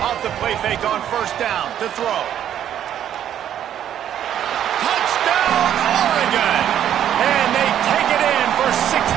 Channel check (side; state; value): left; quieter; 10.4 dB